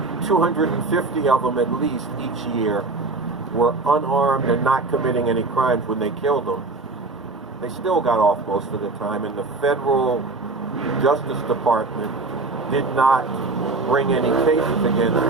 250 of them at least each year were unarmed and not committing any crimes when they killed them. They still got off most of the time, and the federal Justice Department did not bring any cases against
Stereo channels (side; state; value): left; quieter; 3.6 dB